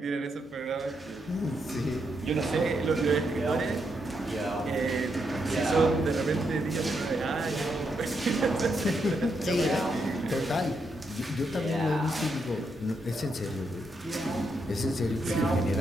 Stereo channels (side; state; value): both; normal; correlation 0.80